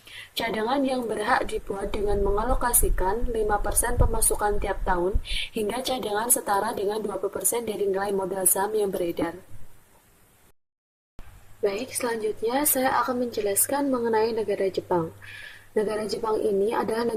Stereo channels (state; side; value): identical; both; correlation 1.00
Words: Cadangan yang berhak dibuat dengan mengalokasikan 5% pemasukan tiap tahun hingga cadangan setara dengan 20% dari nilai modal saham yang beredar. Baik, selanjutnya saya akan menjelaskan mengenai negara Jepang. Negara Jepang ini adalah